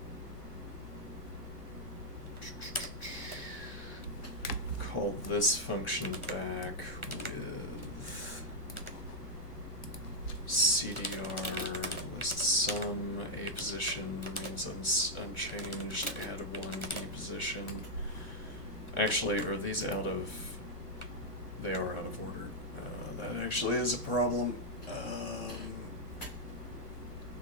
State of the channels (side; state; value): right; late; 1.4 ms